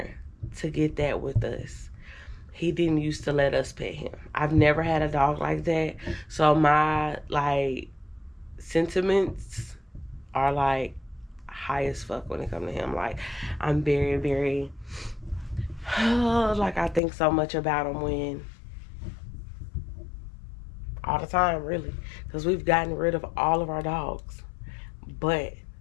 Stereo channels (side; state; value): right; drops out; at 17.0 s